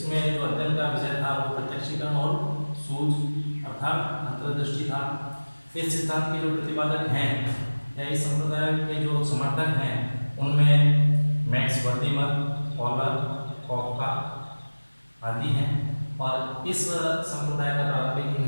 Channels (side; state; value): both; inverted; correlation -1.00